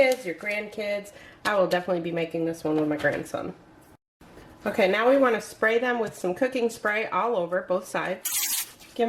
your grandkids. I will definitely be making this one with my grandson. Okay, now we want to spray them with some cooking spray all over both sides. Give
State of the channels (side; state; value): both; identical; correlation 1.00